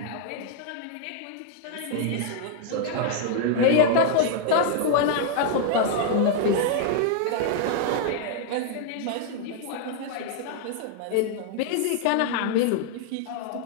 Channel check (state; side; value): different; both; correlation 0.00